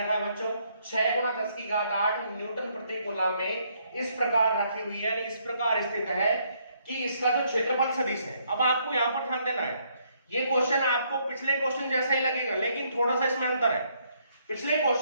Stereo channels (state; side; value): inverted; both; correlation -0.70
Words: है बच्चों 6 × 10⁸ न्यूटन प्रति कूलम में इस प्रकार रखी हुई है, इस प्रकार स्थित है कि इसका जो क्षेत्रफल सदिश है। अब आपको यहाँ पर ध्यान देना है, ये क्वेश्चन आपको पिछले क्वेश्चन जैसा ही लगेगा, लेकिन थोड़ा सा इसमें अंतर है। पिछले